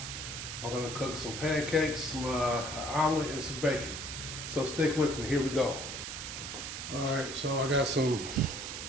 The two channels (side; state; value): right; noise; hiss, 6 dB below the sound